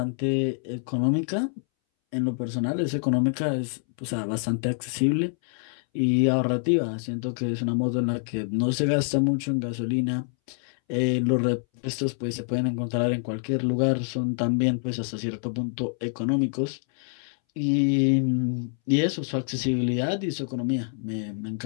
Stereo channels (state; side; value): silent; right; 61 dB below the other